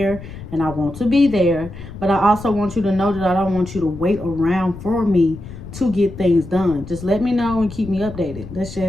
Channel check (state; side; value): noise; left; rumble, 13 dB below the sound